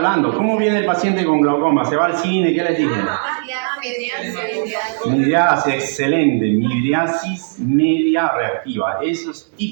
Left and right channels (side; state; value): left; silent; 66 dB below the other